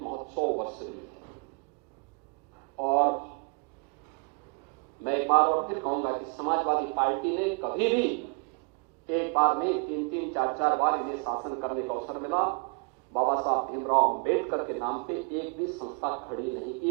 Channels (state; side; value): quieter; left; 35.2 dB